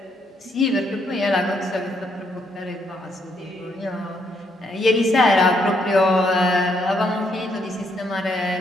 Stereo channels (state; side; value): normal; both; correlation 0.74